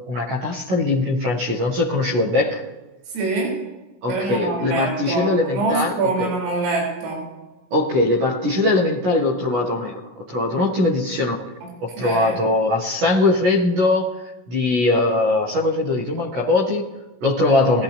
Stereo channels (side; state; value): left; late; 16 ms